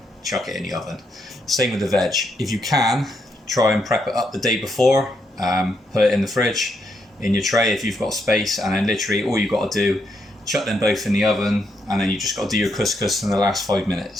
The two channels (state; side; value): normal; both; correlation 0.78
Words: chuck it in the oven. Same with the veg. If you can, try and prep it up the day before, put it in the fridge, in your tray if you've got space, and then literally all you've got to do, chuck them both in the oven, and then you just got to do your couscous in the last 5